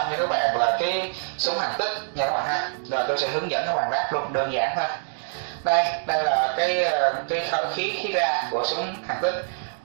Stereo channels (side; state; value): left; silent; digital silence